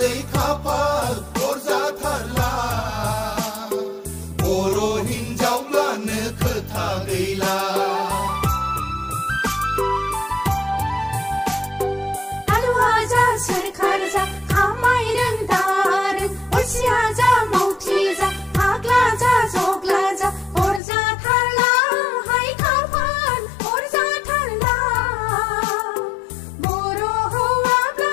खाफाल अरजाथारला बर' हिनजावब्लानो खोथा गैला हालुवा जा सोरखार जा खामायरों दारों अलसिया जा मावथि जा फाग्ला जा जग्ला जा अरजाथारला हाय खाफाल अरजाथारला बर'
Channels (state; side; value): drops out; right; at 20.8 s